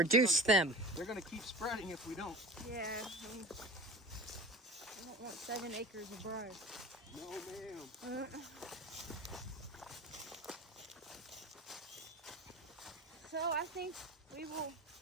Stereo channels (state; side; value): normal; both; correlation 0.35